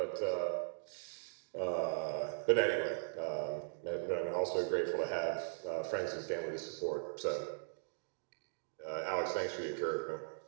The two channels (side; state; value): left; silent; digital silence